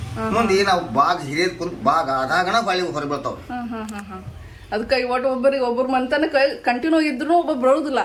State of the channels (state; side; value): identical; both; correlation 1.00